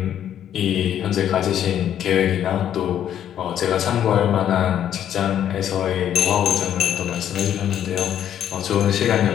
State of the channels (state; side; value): quieter; right; 10.2 dB